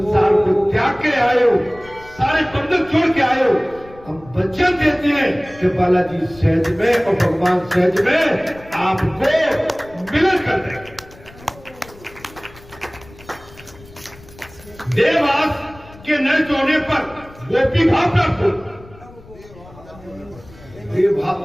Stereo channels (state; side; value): noise; left; rumble, 22 dB below the sound